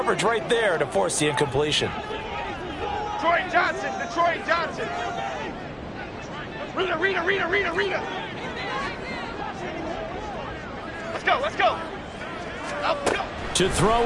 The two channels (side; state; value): both; identical; correlation 1.00